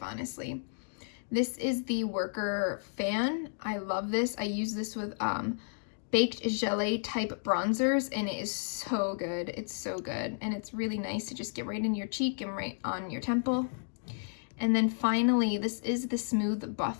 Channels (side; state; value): right; silent; digital silence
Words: This is the Worker Fan. I love this. I use this with baked gelée type bronzers, and it is so good. It's so good, and it's really nice to just get right in your cheek and right on your temple. And then finally, this is the Smooth